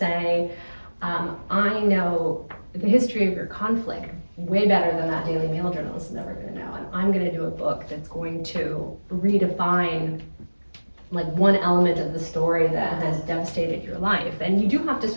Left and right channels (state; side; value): inverted; both; correlation -1.00